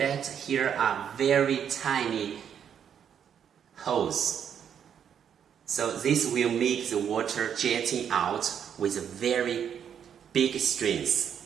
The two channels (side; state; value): left; quieter; 8.4 dB